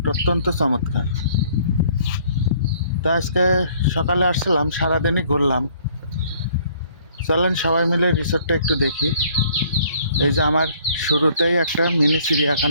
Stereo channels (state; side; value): inverted; both; correlation -0.59